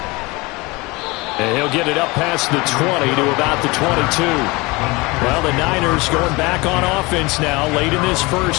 And he'll get it up past the 20 to about the 22. Well, the Niners going back on offense now late in this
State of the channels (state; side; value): quieter; right; 24.1 dB